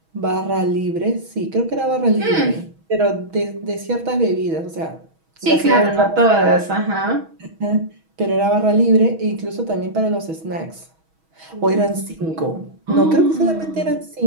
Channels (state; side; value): late; left; 6.2 ms